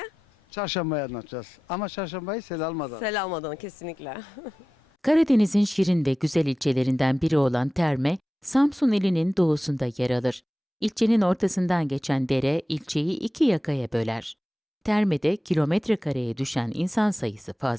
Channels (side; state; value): both; normal; correlation 0.94